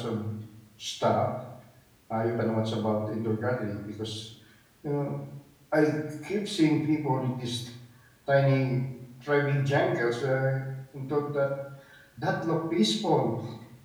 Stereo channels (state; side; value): identical; both; correlation 1.00